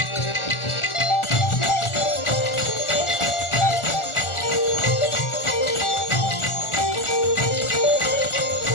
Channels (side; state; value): right; late; 1.4 ms